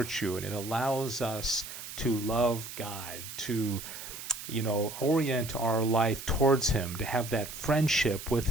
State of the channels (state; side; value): noise; right; hiss, 10 dB below the sound